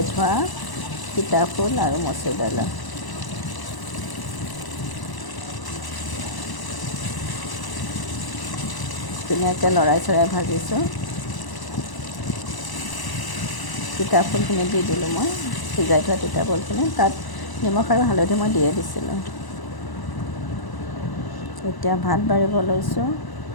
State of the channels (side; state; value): right; late; 1.0 ms